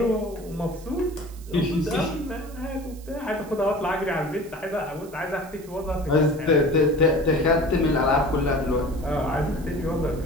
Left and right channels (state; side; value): noise; right; hiss, 22 dB below the sound